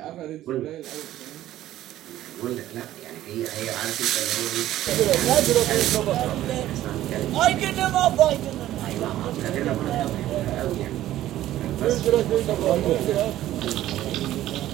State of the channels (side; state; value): left; quieter; 13.8 dB